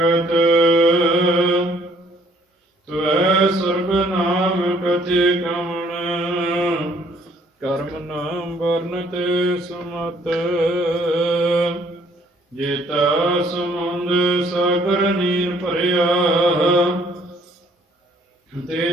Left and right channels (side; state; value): both; normal; correlation 0.62